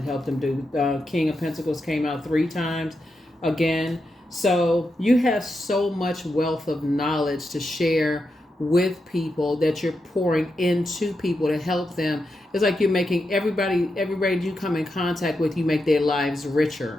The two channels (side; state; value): both; normal; correlation 0.86